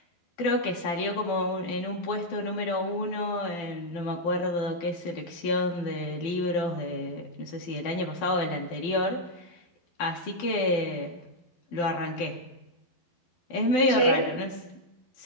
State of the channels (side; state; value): right; late; 12 ms